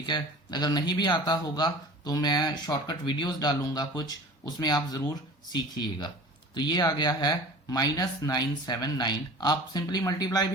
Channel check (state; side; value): normal; both; correlation 0.42